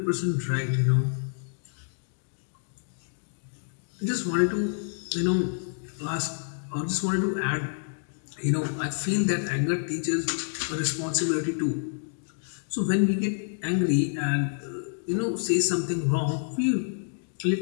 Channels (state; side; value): silent; right; digital silence